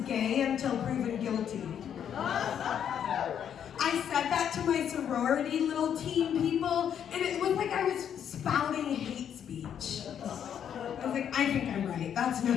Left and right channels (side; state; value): right; quieter; 8.9 dB